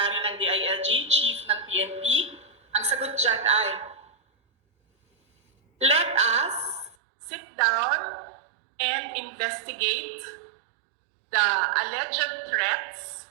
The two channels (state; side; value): drops out; left; at 7.0 s